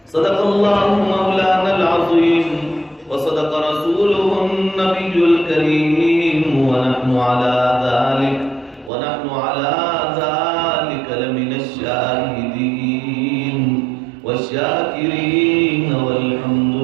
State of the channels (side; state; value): left; drops out; at 8.9 s